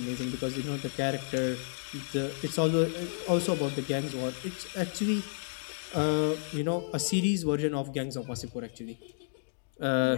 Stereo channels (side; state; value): right; silent; digital silence